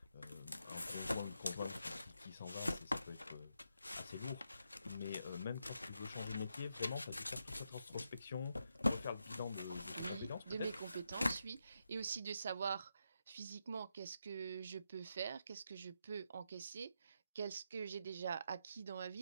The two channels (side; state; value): both; inverted; correlation -0.83